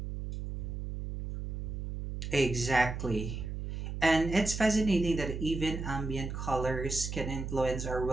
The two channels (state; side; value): noise; right; hum, 5 dB below the sound